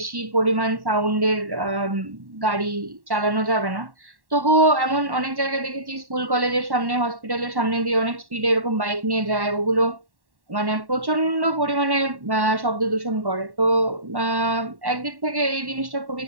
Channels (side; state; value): left; late; 1.1 ms